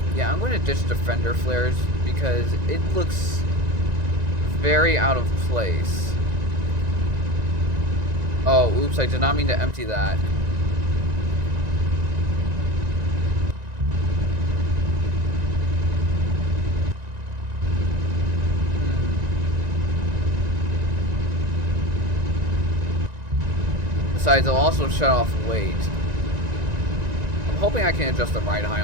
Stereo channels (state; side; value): late; left; 1.9 ms